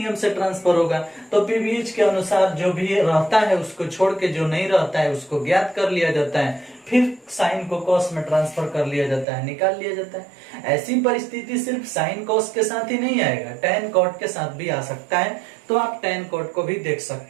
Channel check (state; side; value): drops out; left; at 9.2 s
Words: से ट्रांसफर होगा, तो पीवीएच के अनुसार जो भी रहता है उसको छोड़ के जो नहीं रहता है उसको ज्ञात कर लिया जाता है, फिर साइन को कॉस में ट्रांसफर कर लिया जाता है, निकाल लिया जाता है। ऐसी परिस्थिति सिर्फ साइन कॉस के साथ ही नहीं आएगा, टैन कॉट के साथ भी आ सकता है, तो आप टैन कॉट को भी देख